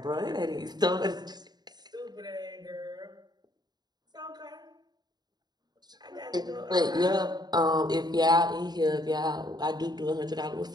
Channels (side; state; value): left; late; 0.20 ms